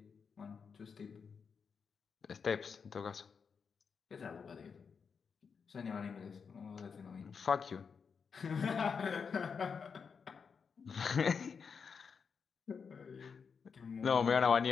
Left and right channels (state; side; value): quieter; right; 5.9 dB